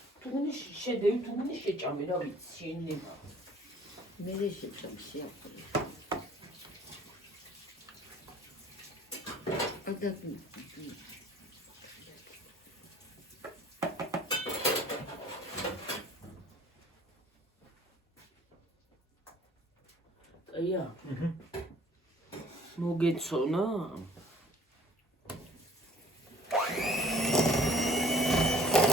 თუ გინდა შედევი თუ გინდა შეჭამე რა ვიცი შენება. მე შეჭამ შეაფრე. ადა აია. მოგეცონა?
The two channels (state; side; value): normal; both; correlation 0.53